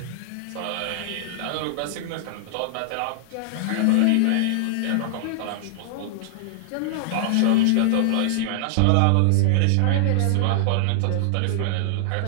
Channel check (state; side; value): different; both; correlation -0.01